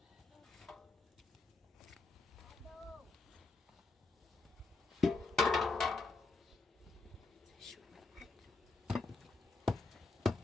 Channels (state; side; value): quieter; right; 3.7 dB